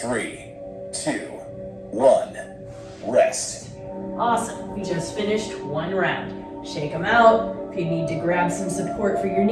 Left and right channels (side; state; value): both; identical; correlation 1.00